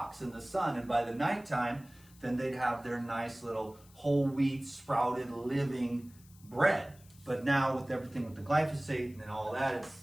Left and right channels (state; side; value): noise; left; hiss, 26 dB below the sound